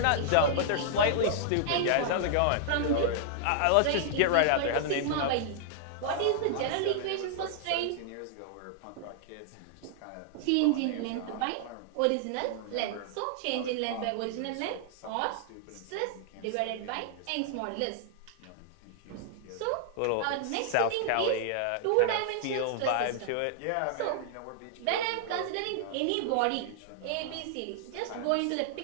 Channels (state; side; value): different; both; correlation -0.01